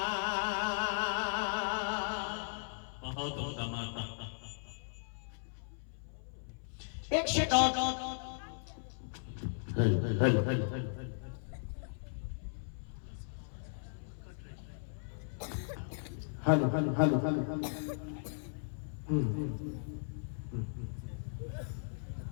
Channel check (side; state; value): right; silent; 53 dB below the other